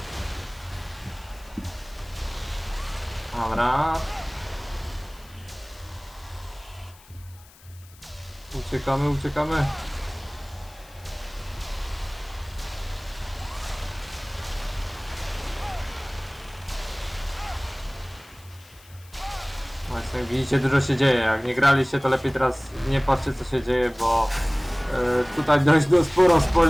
Dobra. Uciekamy, uciekamy. Właśnie, jak widzicie, dużo się dzieje. Jak nie graliście, to lepiej teraz nie patrzcie, co się dzieje, bo tutaj dość sporo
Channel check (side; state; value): left; noise; hiss, 24 dB below the sound